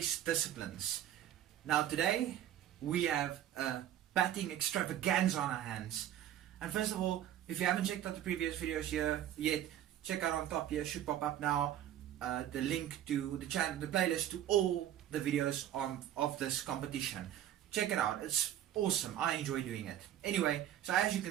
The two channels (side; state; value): left; quieter; 11.6 dB